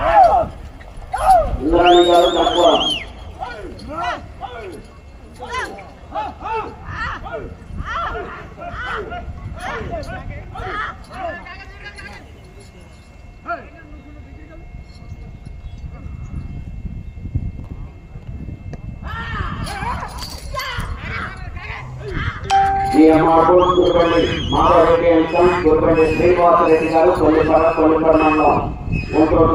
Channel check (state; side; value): identical; both; correlation 1.00